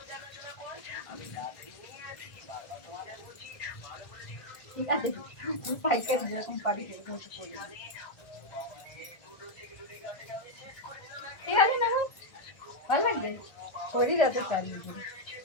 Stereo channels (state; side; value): late; right; 1.6 ms